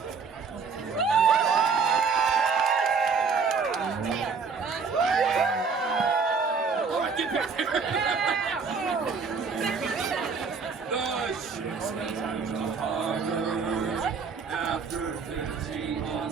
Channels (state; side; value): quieter; left; 5.3 dB